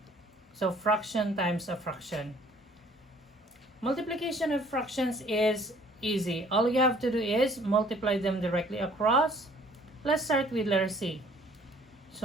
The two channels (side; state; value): both; normal; correlation 0.57